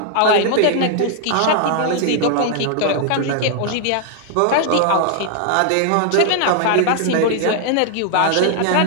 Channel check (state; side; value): different; both; correlation 0.00